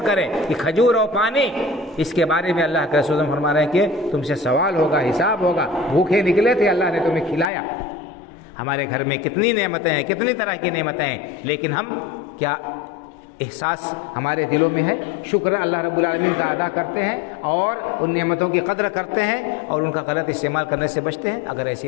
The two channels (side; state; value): right; drops out; at 7.5 s